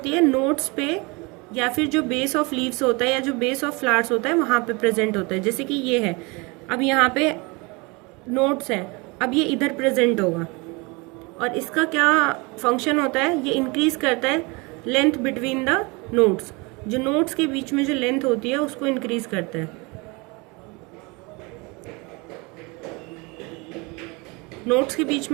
है, नोट्स पे या फिर जो बेस ऑफ लीव्स होता है या जो बेस ऑफ फ्लावर्स होता है वहाँ पे प्रेजेंट होता है। जैसे कि ये है, अब यहाँ पे नोट्स हैं, अब ये इधर प्रेजेंट होगा और इसका क्या फंक्शन होता है, ये इंक्रीज करता है लेंथ बिटवीन द नोट्स। जो नोड्स के बीच में जो लेंथ होती है उसको इंक्रीज करता है। नोड्स के बीच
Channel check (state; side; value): quieter; left; 27.3 dB